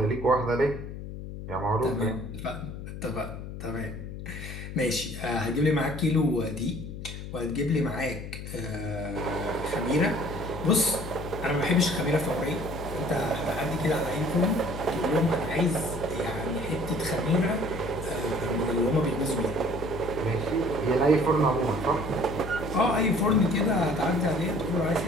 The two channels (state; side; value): noise; left; hum, 9 dB below the sound